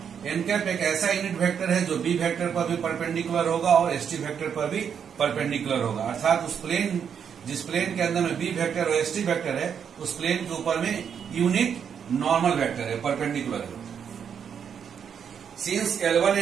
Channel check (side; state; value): left; quieter; 7.6 dB